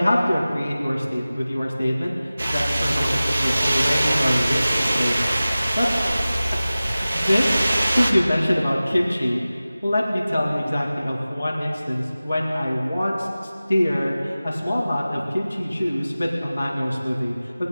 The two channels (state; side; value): inverted; both; correlation -0.97